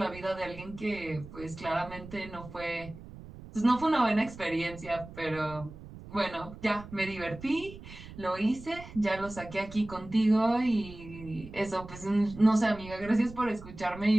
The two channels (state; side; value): noise; right; rumble, 15 dB below the sound